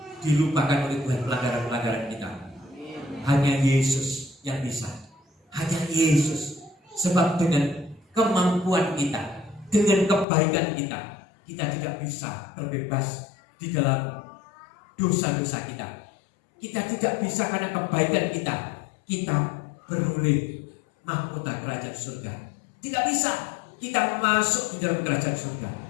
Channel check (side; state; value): right; drops out; at 10.2 s